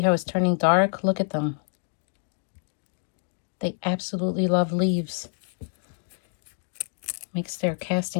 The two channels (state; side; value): silent; right; digital silence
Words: how it's turning dark? Look at them. They absolutely love leaves. Makes their